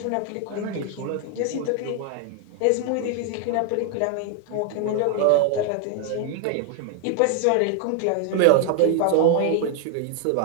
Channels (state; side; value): different; both; correlation 0.00